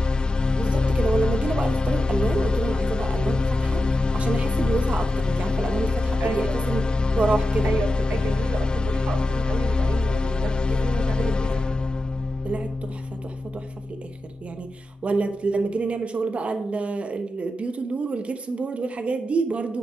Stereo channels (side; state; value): both; normal; correlation 0.90